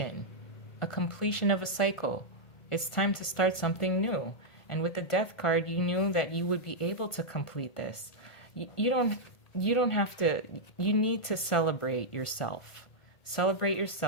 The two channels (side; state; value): right; late; 1.5 ms